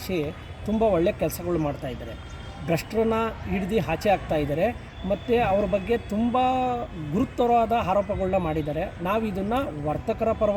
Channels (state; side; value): identical; both; correlation 1.00